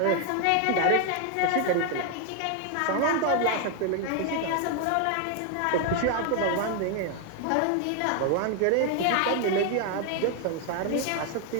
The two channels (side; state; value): both; different; correlation 0.01